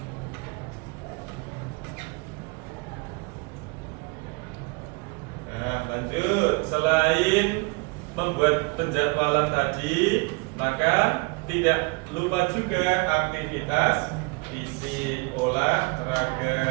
Nah, lanjut. Selain membuat penjadwalan tadi, maka tidak lupa juga aktivitas fisik,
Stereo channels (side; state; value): left; quieter; 29.1 dB